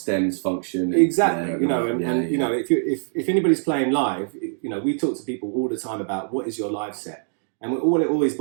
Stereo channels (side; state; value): left; silent; 63 dB below the other